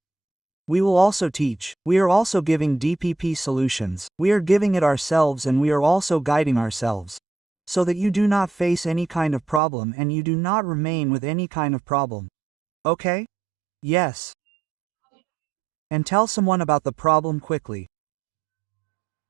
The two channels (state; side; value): drops out; left; at 9.6 s